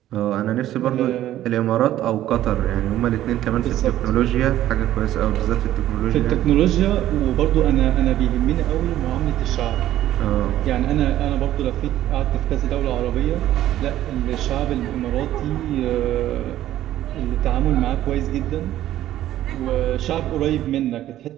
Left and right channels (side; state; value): left; quieter; 13.2 dB